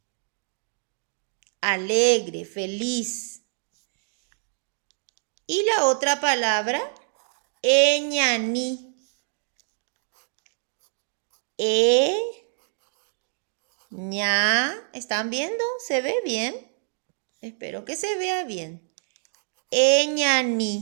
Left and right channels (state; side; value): silent; left; digital silence